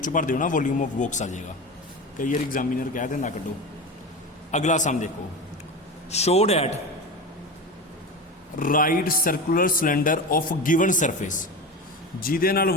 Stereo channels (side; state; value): both; normal; correlation 0.26